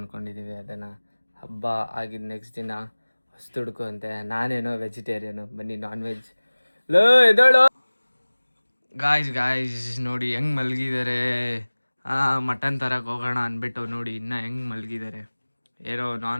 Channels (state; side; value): inverted; both; correlation -1.00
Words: ಅದನ್ನು. ಹಬ್ಬ ಆಗಿದ್ದು ನೆಕ್ಸ್ಟ್ ದಿನ ಹೊಸ್ದುಡ್ಕು ಅಂತೆ. ನಾನೇನೋ ವೆಜಿಟೇರಿಯನು, ಬನ್ನಿ ನಾನ್ ವೆಜ್. ಲೋ ಎದೋಳು ಗಾಯ್ಸ್ ನೋಡಿ ಹೆಂಗೆ ಮಲಗಿದ್ದಾರೆ. ಮಟನ್ ತರಕ್ಕೆ ಹೋಗೋಣ ಅಂದ್ಬಿಟ್ಟು ನೋಡಿ ಇನ್ನೂ ಹೆಂಗೆ ಮಲಗಿದ್ದಾರೆ. ಏನೋ